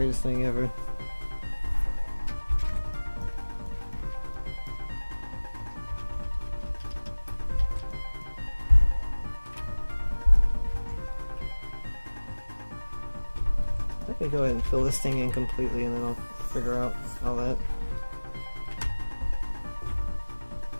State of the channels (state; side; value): inverted; both; correlation -1.00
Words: thing ever. I can go ahead and fill this thing in completely and then I'll figure out all that.